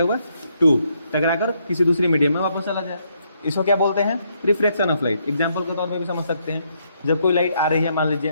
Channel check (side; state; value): both; inverted; correlation -0.74